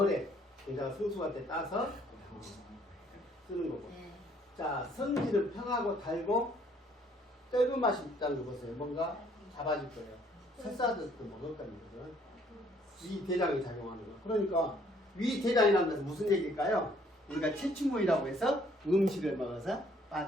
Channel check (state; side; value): normal; both; correlation 0.63